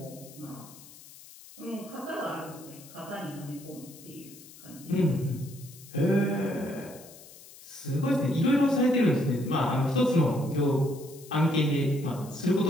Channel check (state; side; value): noise; left; hiss, 19 dB below the sound